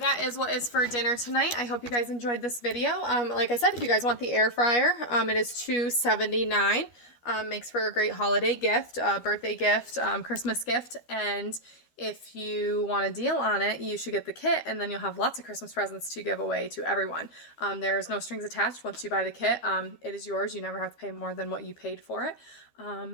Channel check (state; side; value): late; right; 12 ms